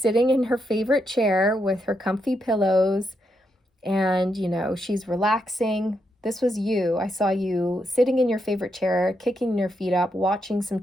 in her favorite chair with her comfy pillows and, you know, she's relaxing. This was you. I saw you sitting in your favorite chair, kicking your feet up, watching some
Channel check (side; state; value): both; normal; correlation 0.81